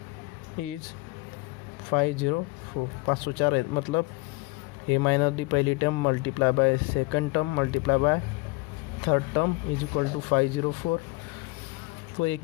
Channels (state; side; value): quieter; right; 23.8 dB